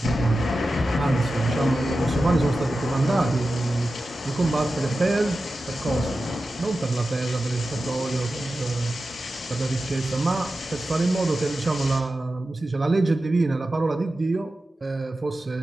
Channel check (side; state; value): both; normal; correlation 0.93